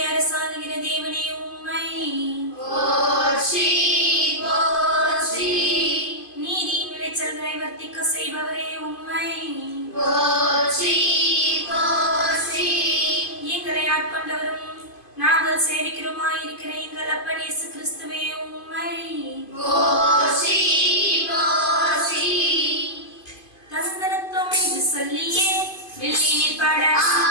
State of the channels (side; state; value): right; late; 2.5 ms